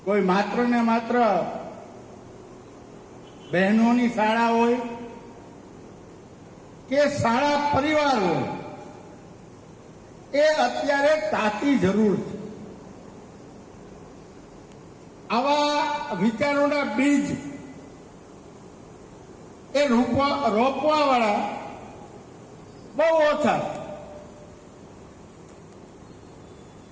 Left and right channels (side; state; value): both; identical; correlation 1.00